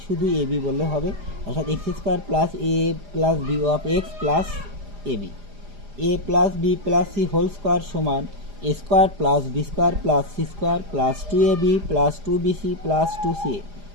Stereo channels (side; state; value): left; late; 4.9 ms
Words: শুধু a b বললে হবে, অর্থাৎ x square plus A plus B of X plus A b, a plus B plus C whole square সমান a square plus B square plus C square plus 2ab plus 2bc plus 2ca,